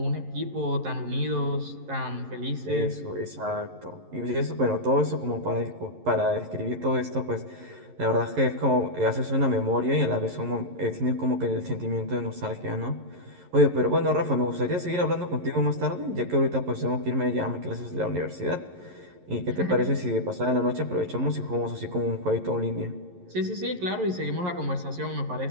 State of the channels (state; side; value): late; left; 11 ms